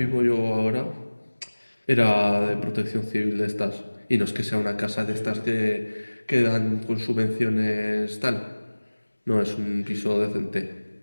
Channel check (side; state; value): both; inverted; correlation -1.00